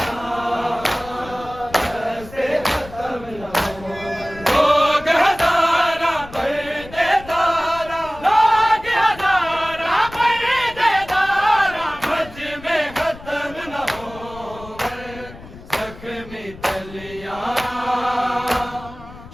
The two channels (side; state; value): left; noise; rumble, 17 dB below the sound